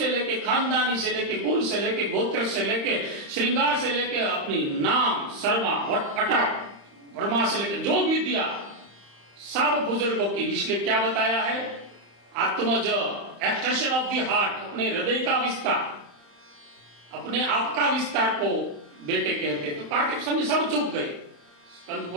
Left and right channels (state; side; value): late; left; 35 ms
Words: लेके, खानदानी से लेके, कुल से लेके, गोत्र से लेके, श्रृंगार से लेके, अपनी नाम, शर्मा, अटक, वर्मा से लेके जो भी दिया सब बुजुर्गों की। इसलिए क्या बताया है, आत्मज, एक्सटेंशन ऑफ द हार्ट, अपने हृदय का विस्तार, अपने आप का विस्तार को बेटे कहते। तो कार्तिक स्वामी सब चुप गए। स्कंद